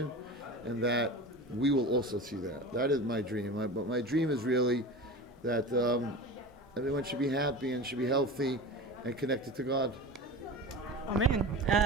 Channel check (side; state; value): both; normal; correlation 0.31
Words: and that we will also see that. That is my dream. But my dream is really that everyone should be happy and should be healthy and connected to God. Amen.